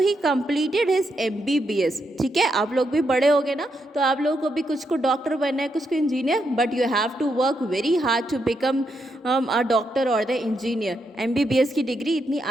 completed his MBBS. ठीक है, आप लोग भी बड़े हो गए ना, तो आप लोगों को भी कुछ को डॉक्टर बनना है, कुछ को engineer, but you have to work very hard to become a doctor और द इंजीनियर. MBBS की डिग्री इतनी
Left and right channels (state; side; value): normal; both; correlation 0.81